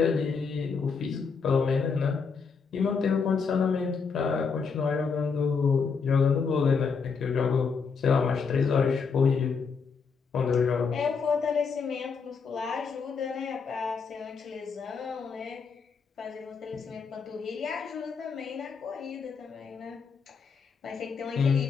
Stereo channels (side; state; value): right; quieter; 5.5 dB